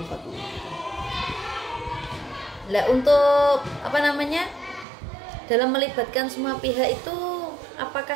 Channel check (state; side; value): drops out; left; at 4.9 s